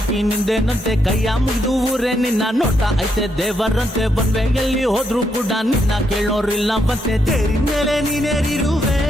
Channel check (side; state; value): both; normal; correlation 0.78